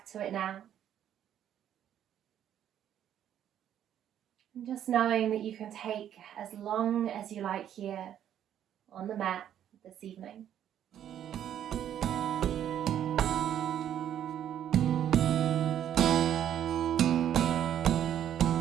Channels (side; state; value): left; quieter; 10.4 dB